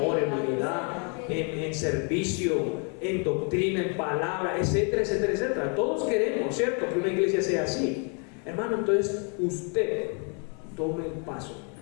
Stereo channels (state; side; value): quieter; right; 37.9 dB